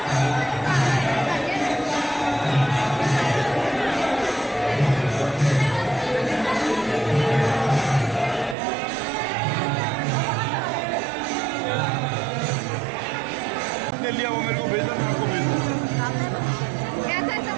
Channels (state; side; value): drops out; left; at 8.6 s